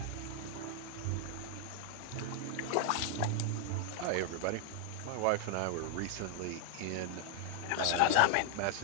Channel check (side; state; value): both; different; correlation 0.00